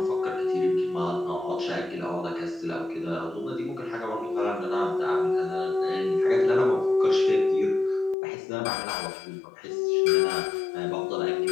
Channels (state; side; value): drops out; right; at 8.2 s